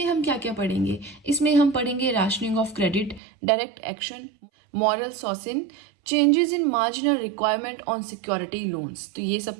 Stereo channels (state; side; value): drops out; left; at 3.2 s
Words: हम क्या क्या पढ़ेंगे, इसमें हम पढ़ेंगे rationing of credit, direct action, moral suasion, changes in marginal requirement on security loans. तो ये